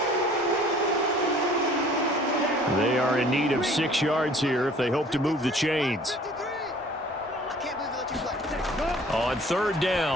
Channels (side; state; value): both; normal; correlation 0.52